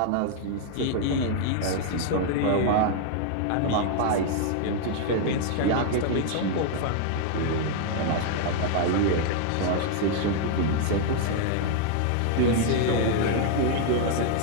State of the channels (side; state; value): both; different; correlation 0.00